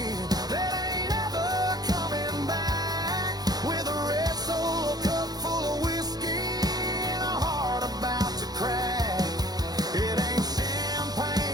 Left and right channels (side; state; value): left; late; 0.19 ms